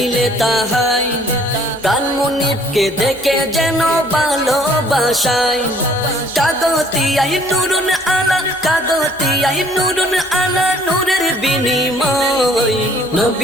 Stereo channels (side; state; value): both; normal; correlation 0.59